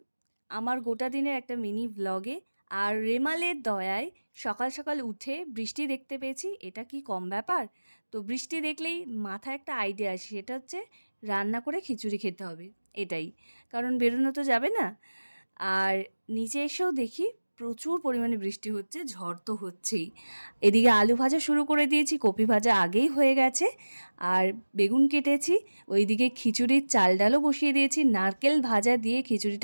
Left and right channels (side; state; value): both; inverted; correlation -1.00